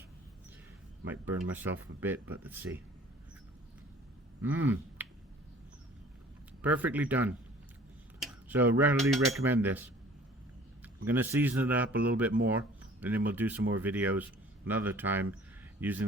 Might burn myself a bit, but let's see. Perfectly done. So readily recommend this. I'm going to season it up a little bit more, and then we'll do some more videos another time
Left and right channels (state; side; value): normal; both; correlation 0.51